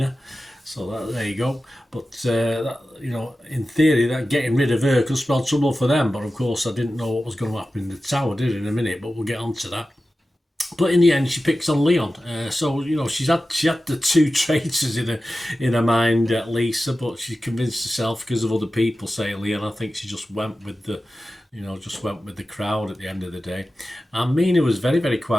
so there you go. But, in theory, that getting rid of her could spell trouble for them, but of course I didn't know what was going to happen in the tower, did I, in a minute, but we'll get on to that. But in the end, she picks on Leon. So she had the 2 traitors in her mind, Lisa, but she convinced herself because of other people saying Leon. I think she just went with the crowd at the end of the day. And Mina was very, very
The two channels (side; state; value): both; normal; correlation 0.94